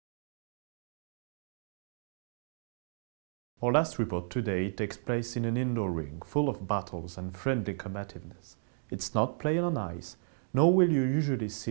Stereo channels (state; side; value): silent; left; digital silence